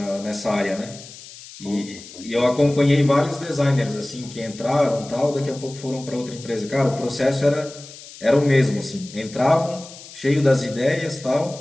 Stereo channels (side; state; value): left; noise; hiss, 17 dB below the sound